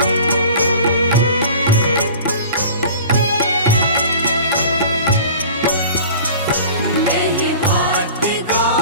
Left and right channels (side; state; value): both; inverted; correlation -0.41